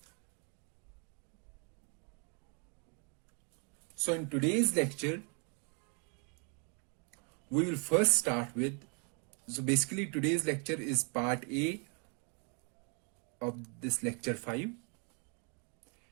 So in today's lecture, we will first start with, so basically today's lecture is part A of this lecture 5.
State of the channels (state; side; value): quieter; left; 36.5 dB